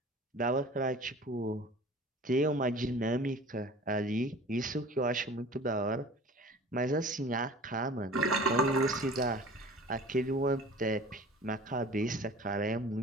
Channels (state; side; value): normal; both; correlation 0.43